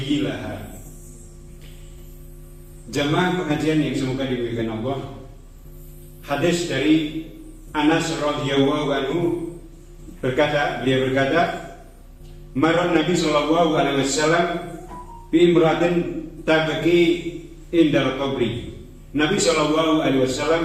Jamaah pengajian yang semoga dimuliakan Allah, hadis dari Anas radhiyallahu anhu beliau berkata, marra Nabi sallallahu alaihi wasallam bi imratin tabki indal qabri. Nabi sallallahu alaihi wasallam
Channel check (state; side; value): identical; both; correlation 1.00